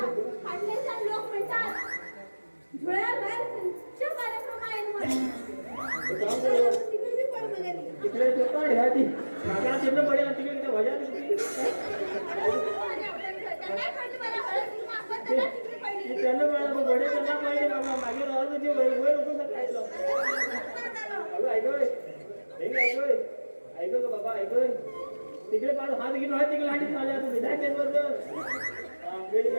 लोक म्हणतात धुळ्यावर त्यांच्या कार्यक्रम आहे ती मागा चिन्ह पडेल आणि तिकडे किती वजा त्यांना मला बडे त्यांना पाहिजे बाबा मागे राहतो ते वर होतो खायला अगं ऐकय ऐक का बाबा ऐकय तिकडे पाहतो हात घेऊन हात तिकडे लांडी चालले आता विधाय केंद्र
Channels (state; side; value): inverted; both; correlation -1.00